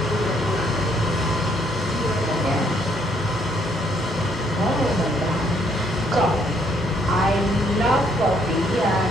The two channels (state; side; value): normal; both; correlation 0.69